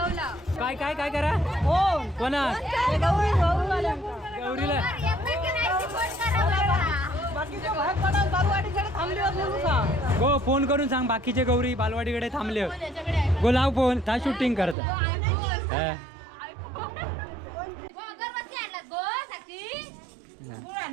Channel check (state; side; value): drops out; left; at 14.8 s